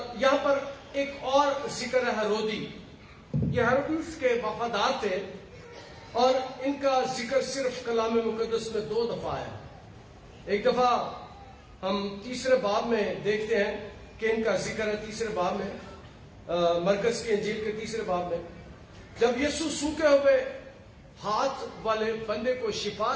یہاں پر ایک اور ذکر ہے ہیرودی۔ یہ ہیرودیس کے وفادار تھے، اور ان کا ذکر صرف کلام مقدس میں 2 دفعہ ہے۔ ایک دفعہ ہم تیسرے باب میں دیکھتے ہیں کہ ان کا ذکر ہے تیسرے باب میں، مرقس کی انجیل کے تیسرے باب میں، جب یسوع سوکھے ہوئے ہاتھ والے بندے کو شفا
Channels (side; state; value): both; identical; correlation 1.00